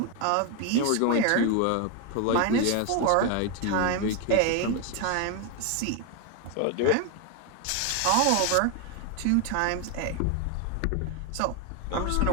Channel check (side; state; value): both; different; correlation 0.01